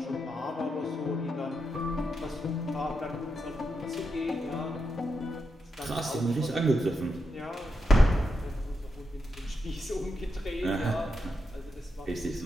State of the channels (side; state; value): both; normal; correlation 0.85